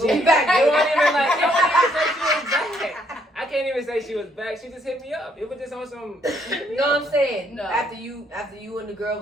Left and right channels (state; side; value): normal; both; correlation 0.70